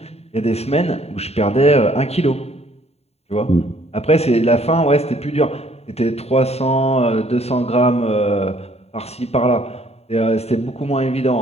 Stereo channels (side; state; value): right; late; 0.30 ms